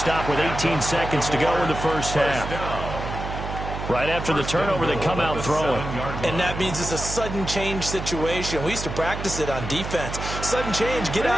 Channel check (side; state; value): right; noise; hum, 6 dB below the sound